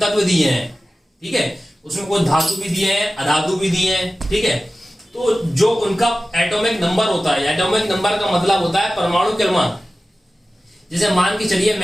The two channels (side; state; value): both; normal; correlation 0.95